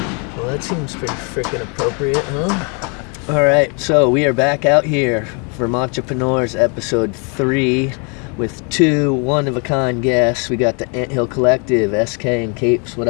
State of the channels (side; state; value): right; quieter; 36.0 dB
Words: Well, that seems pretty freaking appropriate, huh? All right, so we are back out here, Vermontrepreneurs episode 3, with 2 one-of-a-kind guests. We got the Anthill Collective, Eskae and Capes. What